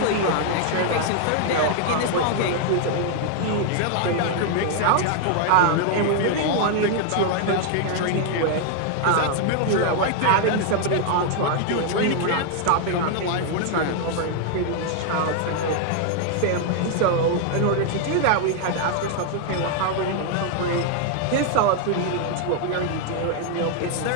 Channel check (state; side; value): different; both; correlation 0.00